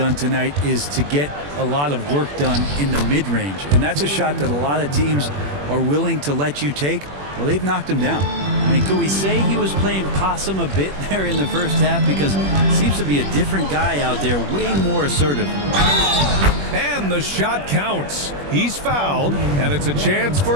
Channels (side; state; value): left; late; 21 ms